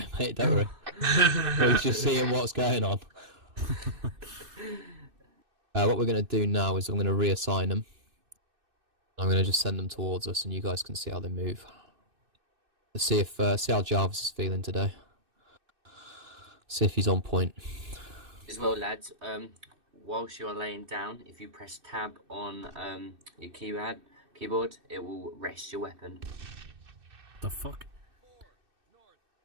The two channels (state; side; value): late; left; 2.6 ms